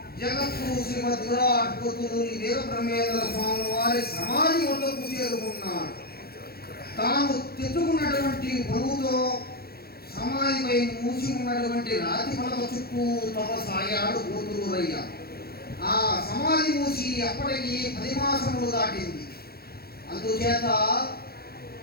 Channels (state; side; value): late; right; 0.45 ms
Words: జగద్గురు శ్రీమద్ విరాట్ పోతులూరి వీరబ్రహ్మేంద్ర స్వామి వారి సమాధి వద్దకు చేరుకున్నాడు. తాను తెచ్చుకున్నటువంటి బరువుతో సమాధిపై మూసి ఉన్నటువంటి రాతి పలక చుట్టూ తపసాగాడు పోతులూరయ్య. ఆ సమాధి మూసి అప్పటికి 10 మాసములు దాటింది. అందుచేత